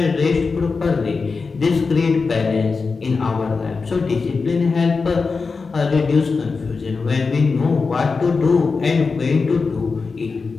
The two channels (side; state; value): right; quieter; 4.5 dB